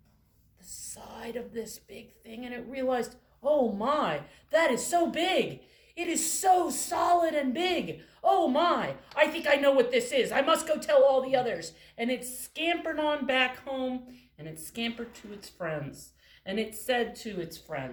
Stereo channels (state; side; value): identical; both; correlation 1.00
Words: the side of this big thing, and it realized, oh my, that is so big. It is so solid and big. Oh my, I think I know what this is. I must go tell all the others. And it scampered on back home, and it scampered to its friends. And it said to its